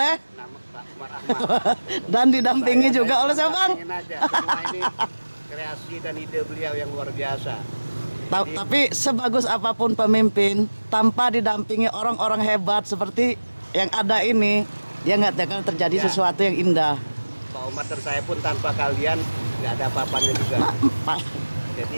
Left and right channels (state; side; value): inverted; both; correlation -1.00